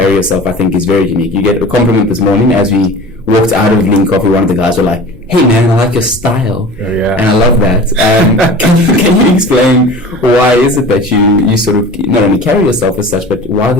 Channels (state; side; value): normal; both; correlation 0.38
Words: yourself, I think, is very unique. You get a compliment this morning as we walked out of Lean Coffee. One of the guys were like, "Hey man, I like your style." Oh, yeah. And I love that. Can you explain why is it that you sort of not only carry yourself as such, but why